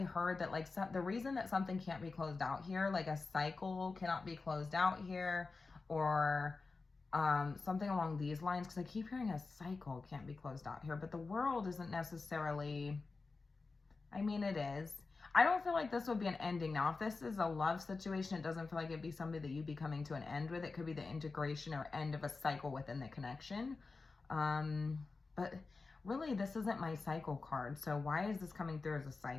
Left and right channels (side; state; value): right; quieter; 4.0 dB